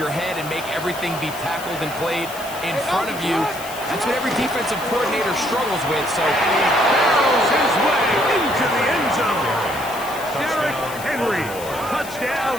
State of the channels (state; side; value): noise; left; hiss, 14 dB below the sound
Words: head and make everything be tackled and played in front of you? That's what every defensive coordinator struggles with. So he barrels his way into the end zone. Derrick Henry,